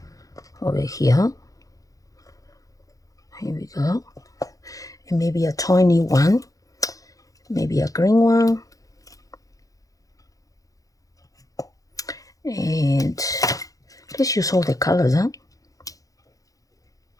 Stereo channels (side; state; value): right; late; 0.17 ms